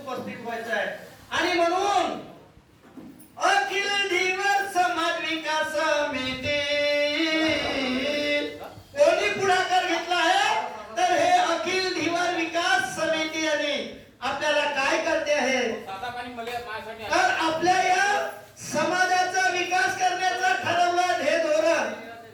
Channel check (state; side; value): identical; both; correlation 1.00